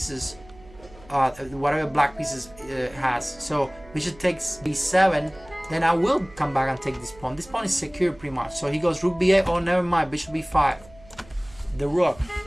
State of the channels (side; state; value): right; noise; hum, 23 dB below the sound